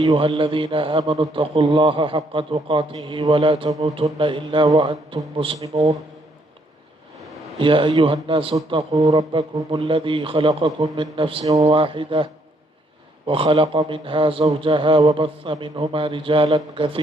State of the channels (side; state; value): both; normal; correlation 0.70